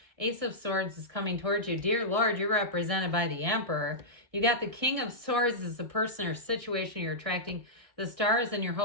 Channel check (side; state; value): left; late; 1.6 ms